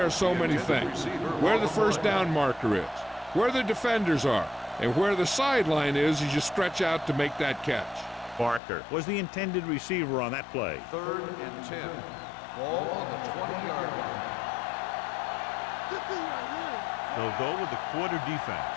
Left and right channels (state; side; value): drops out; right; at 8.6 s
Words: of so many things. Where the first down marker is, where the defenders are, and where the sideline is as you stretch out to make that catch. Barker was the intended receiver on that play. Third and 10. Ball on the 20-yard line. They'll go with the quarter